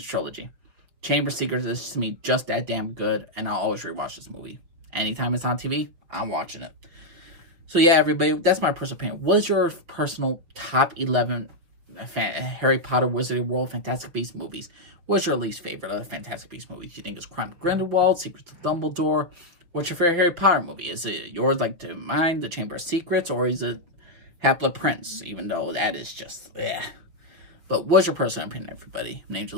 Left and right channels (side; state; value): left; late; 6.2 ms